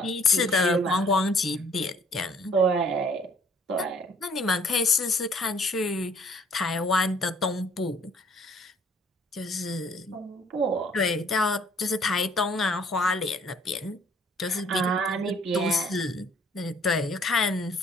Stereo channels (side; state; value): both; normal; correlation 0.60